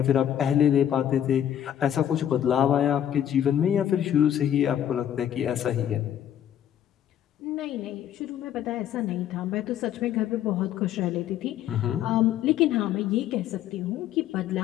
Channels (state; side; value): quieter; right; 10.5 dB